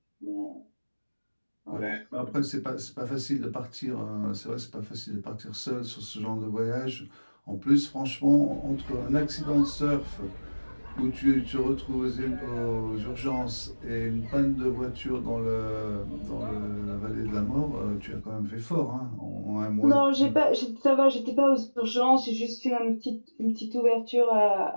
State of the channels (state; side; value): inverted; both; correlation -1.00